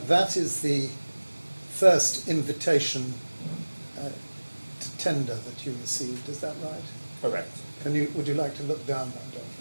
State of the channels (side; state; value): both; inverted; correlation -1.00